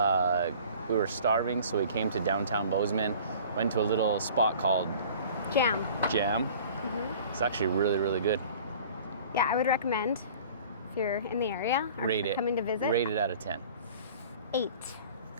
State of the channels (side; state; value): both; inverted; correlation -0.46